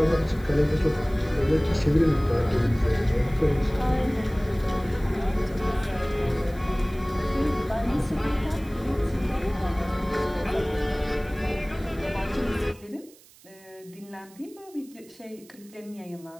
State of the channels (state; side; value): noise; right; hiss, 25 dB below the sound